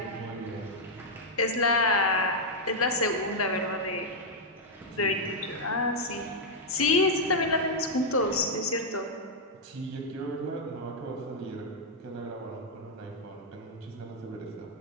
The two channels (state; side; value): normal; both; correlation -0.04